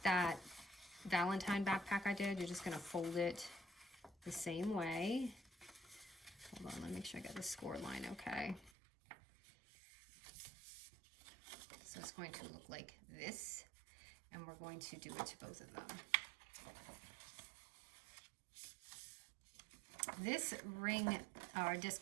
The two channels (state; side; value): drops out; left; at 8.7 s